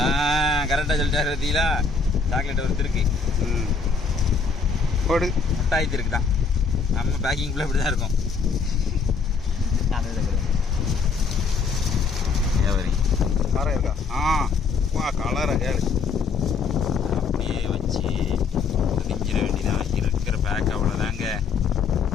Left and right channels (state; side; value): quieter; right; 5.1 dB